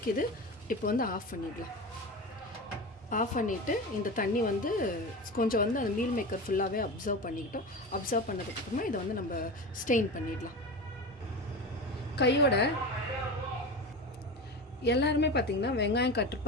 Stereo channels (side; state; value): both; normal; correlation 0.26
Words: இப்போ வந்து ஆஃப் பண்ணிடலாம். ஆஃப் பண்ணிவிட்டு இந்த தண்ணி வந்து கொஞ்சம் வந்து அந்த மீல் மேக்கர் ஃபுல்லாகவே அப்சர்வ் பண்ணிக்கிட்டோம். அப்சர்வ் பண்ணதுக்கப்புறமா இதை வந்து நம்ம ஸ்டெயின் பண்ணிடலாம். கையோட எல்லாருமே பார்த்திங்கன்னா வெங்காயம் கட்